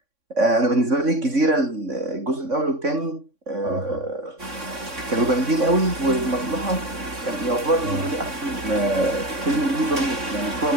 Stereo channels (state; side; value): late; left; 3.6 ms